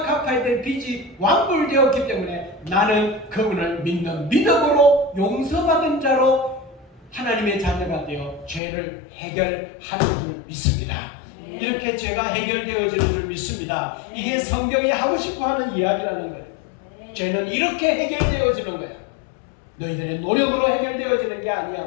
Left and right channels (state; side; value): drops out; right; at 8.6 s